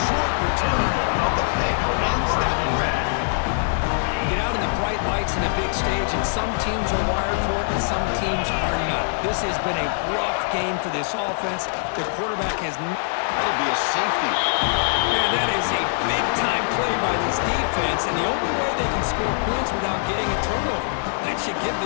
short return of the pick ends that run. Get out in the bright lights in a big stage, and some teams are wired for it and some teams are not. This has been a rough game for this offense. The quarterback has... That'll be a safety. Man, that is a big-time play by this defense, and the only way they can score points without getting a turnover. That should give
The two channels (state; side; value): silent; right; 63 dB below the other